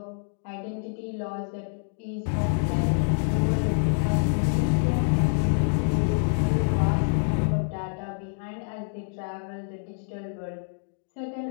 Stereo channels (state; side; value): silent; right; digital silence